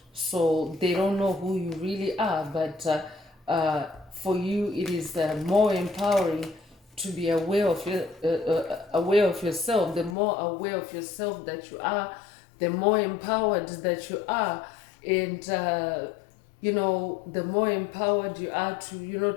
So they don't know who you really are. But for you, it is more empowering to be aware of yourself. The more aware of yourself that you are, the more empowered that you are, and the more empowered you are to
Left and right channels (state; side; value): drops out; right; at 10.2 s